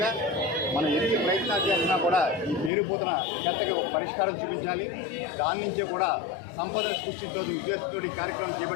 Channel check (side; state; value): right; drops out; at 2.7 s